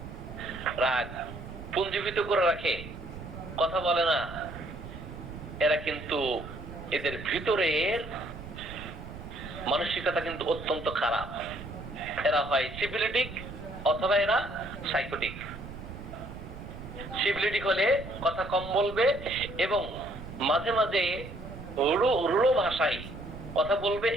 রাগ পুঞ্জীভূত করে রাখে, কথা বলে না, এরা কিন্তু এদের ভিতরের মানসিকতা কিন্তু অত্যন্ত খারাপ। এরা হয় সিফিলিটিক অথবা এরা সাইকোটিক। সিফিলিটিক হলে কথা কম বলবে এবং মাঝে মাঝে রূঢ় ভাষায় কথা বলবে,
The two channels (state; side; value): noise; right; rumble, 12 dB below the sound